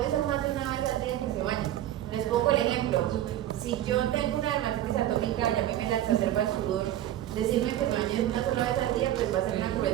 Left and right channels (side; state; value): left; quieter; 12.8 dB